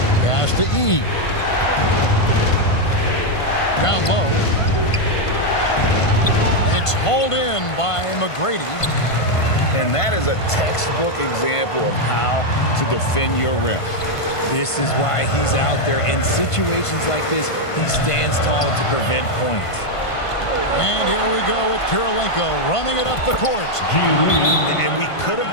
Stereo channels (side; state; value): right; late; 1.5 ms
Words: Pass to E. Down low. It's hauled in by McGrady. And that is a textbook example of how to defend your rim. This is why he's out there. In situations like this, he stands tall to prevent points. And here we go with Kirilenko running it up the court. And we could have